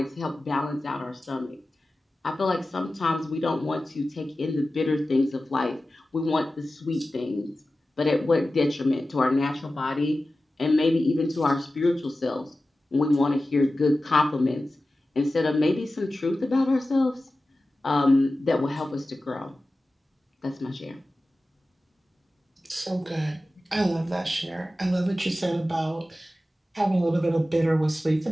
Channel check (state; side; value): normal; both; correlation 0.95